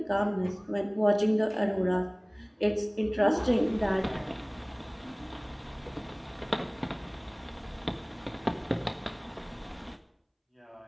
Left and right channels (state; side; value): identical; both; correlation 1.00